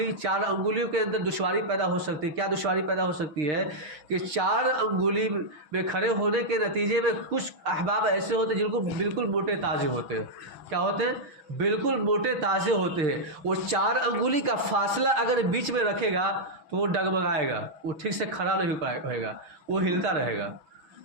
کے اندر دشواری پیدا ہو سکتی ہے۔ کیا دشواری پیدا ہو سکتی ہے؟ کہ 4 انگلی میں کھڑے ہونے کے نتیجے میں کچھ احباب ایسے ہوتے ہیں جن کو بالکل موٹے تازے ہوتے ہیں۔ کیا ہوتے ہیں؟ بالکل موٹے تازے ہوتے ہیں۔ وہ 4 انگلی کا فاصلہ اگر بیچ میں رکھے گا تو وہ ڈگمگائے گا، وہ ٹھیک سے کھڑا نہیں ہوئے گا، وہ ہلتا رہے گا۔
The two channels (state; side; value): late; left; 6.1 ms